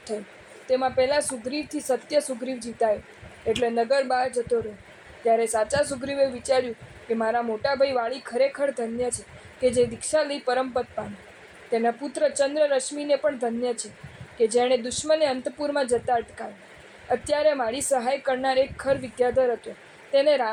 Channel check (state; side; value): identical; both; correlation 1.00